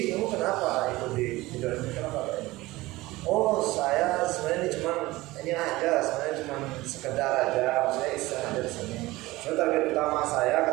kamu kenapa ikut di Indonesia? Kenapa Pak Edi? Oh saya sebenarnya ini aja, sebenarnya cuma sekedar aja. Saya iseng dari sini. So, target utama saya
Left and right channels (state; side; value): quieter; left; 19.3 dB